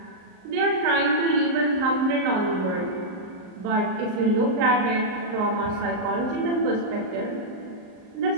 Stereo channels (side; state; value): left; late; 38 ms